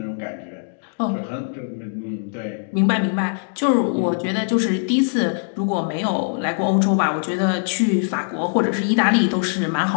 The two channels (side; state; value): right; silent; digital silence